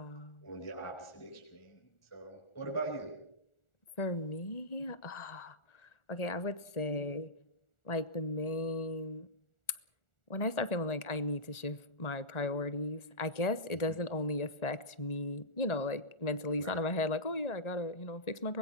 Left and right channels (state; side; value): late; right; 1.4 ms